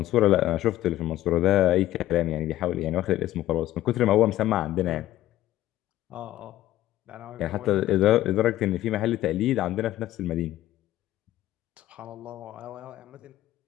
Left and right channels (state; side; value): quieter; right; 14.5 dB